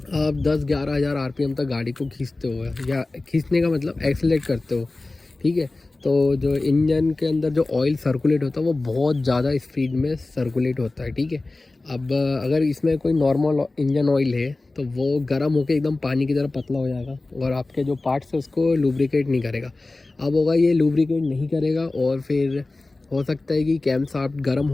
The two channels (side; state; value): right; quieter; 3.2 dB